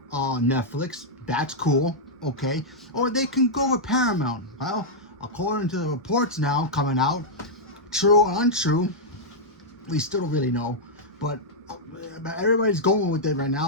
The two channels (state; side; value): normal; both; correlation -0.07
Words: Netflix. That's cool. Okay. Or they can go with Paramount. Well, according to the reports now coming out, true or untrue, we still don't really know. But everybody's going with it right